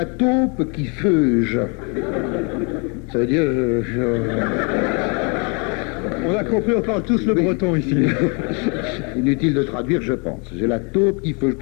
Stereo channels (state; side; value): quieter; right; 34.1 dB